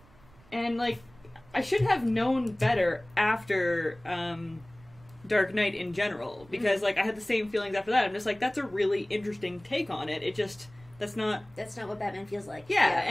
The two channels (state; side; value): noise; right; rumble, 26 dB below the sound